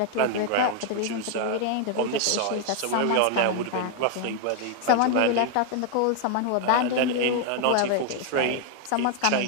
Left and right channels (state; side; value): different; both; correlation 0.00